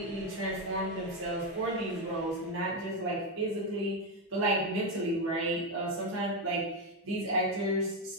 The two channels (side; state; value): both; normal; correlation 0.08